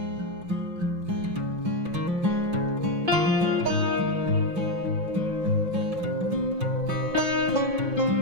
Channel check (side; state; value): left; late; 5.6 ms